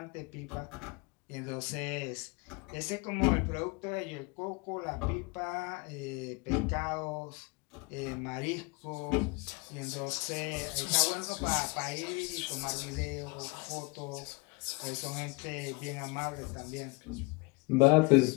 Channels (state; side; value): quieter; right; 27.7 dB